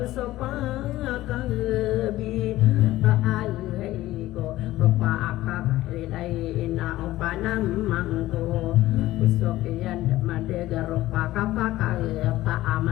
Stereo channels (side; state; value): right; quieter; 16.1 dB